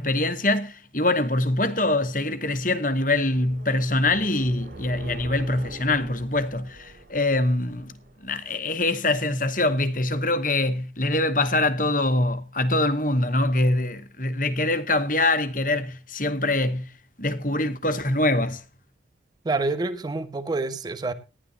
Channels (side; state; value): both; normal; correlation 0.39